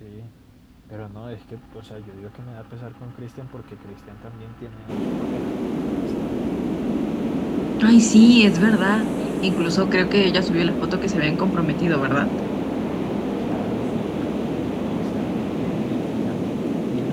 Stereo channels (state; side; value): identical; both; correlation 1.00